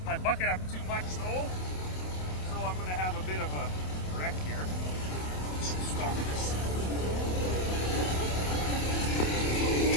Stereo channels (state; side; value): late; right; 27 ms